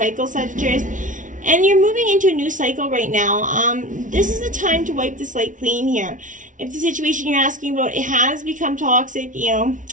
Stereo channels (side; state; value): left; late; 0.37 ms